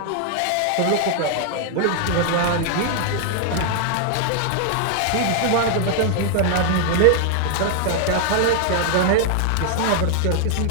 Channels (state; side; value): different; both; correlation 0.00